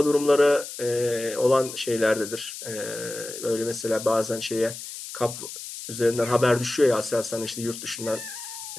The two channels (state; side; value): noise; left; hiss, 10 dB below the sound